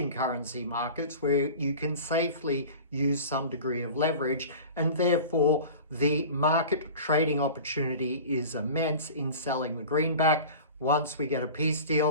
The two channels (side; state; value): both; inverted; correlation -0.37